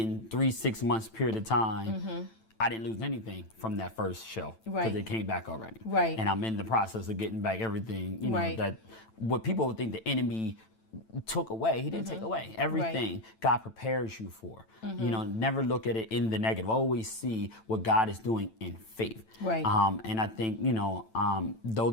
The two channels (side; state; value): right; late; 9.0 ms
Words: 3-6 months period of time, I didn't lose anything from that first show because Right. it came back already. Right. And I'm in the process of getting back everything, Right. that what people would think the enemy took away, he didn't take away. Everything God prepares you for. Never look at it in the negative. Always see what God is doing in faith. Right. And I think, though